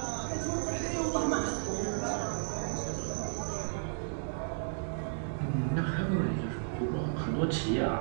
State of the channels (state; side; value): silent; left; digital silence